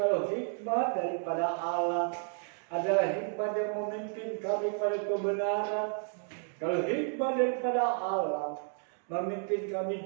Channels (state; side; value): silent; left; 57 dB below the other